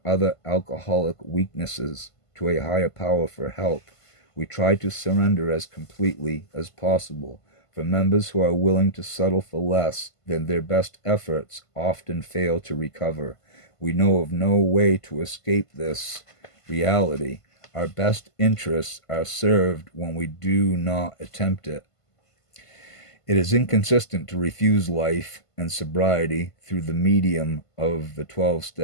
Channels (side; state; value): right; late; 1.5 ms